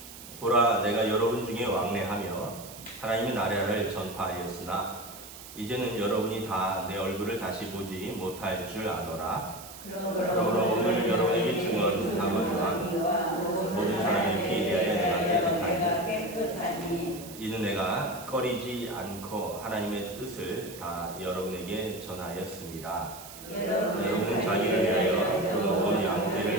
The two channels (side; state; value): right; noise; hiss, 15 dB below the sound